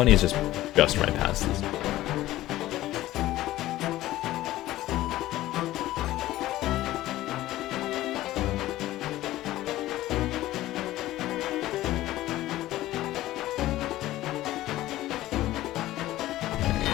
is just right past this.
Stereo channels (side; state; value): right; quieter; 15.6 dB